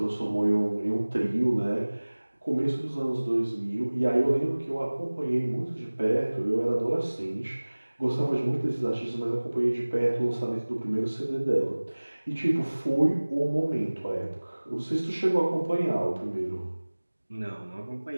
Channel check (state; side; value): inverted; both; correlation -1.00